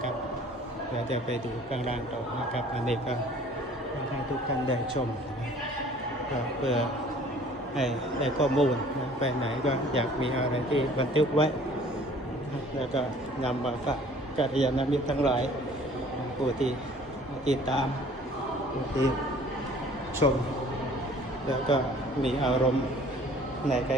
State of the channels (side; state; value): both; normal; correlation 0.52